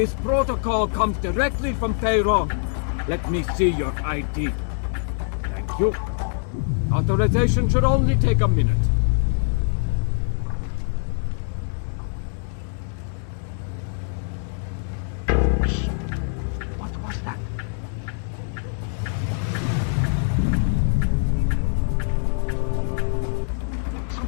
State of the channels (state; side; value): silent; right; 63 dB below the other